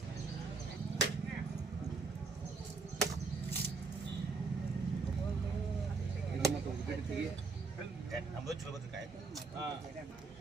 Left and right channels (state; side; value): quieter; left; 4.3 dB